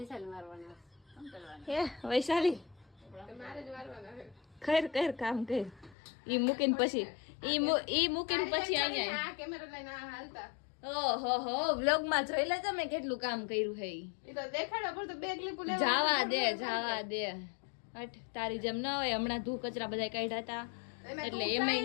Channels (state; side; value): drops out; right; at 6.0 s